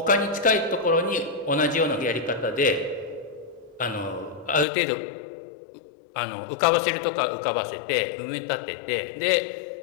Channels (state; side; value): drops out; right; at 4.7 s